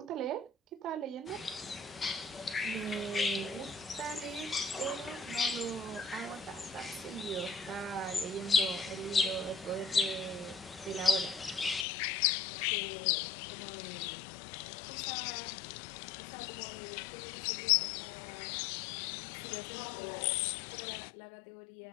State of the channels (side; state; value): right; drops out; at 11.9 s